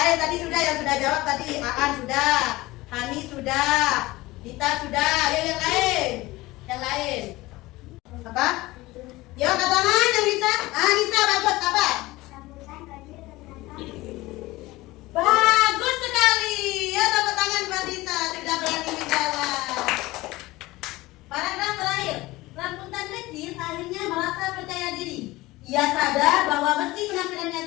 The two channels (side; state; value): right; quieter; 19.6 dB